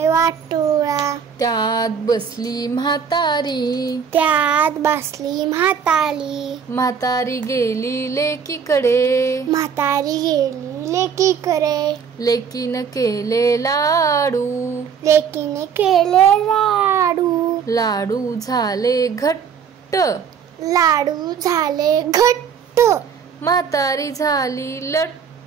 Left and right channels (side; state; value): left; quieter; 6.9 dB